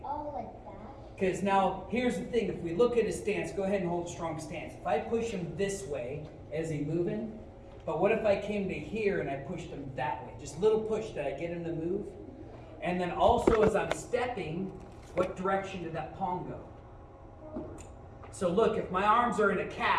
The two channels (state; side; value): identical; both; correlation 1.00